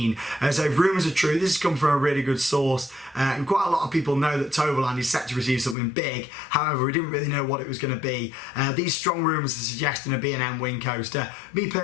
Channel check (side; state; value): right; drops out; at 5.8 s